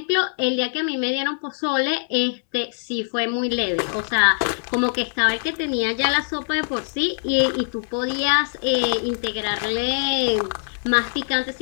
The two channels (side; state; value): right; silent; 64 dB below the other